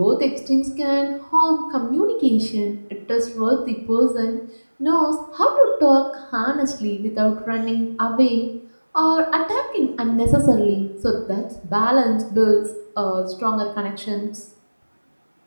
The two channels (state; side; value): inverted; both; correlation -1.00